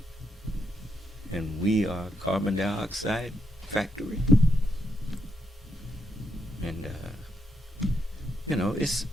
And we are a carbon dioxide factory. And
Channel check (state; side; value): normal; both; correlation 0.79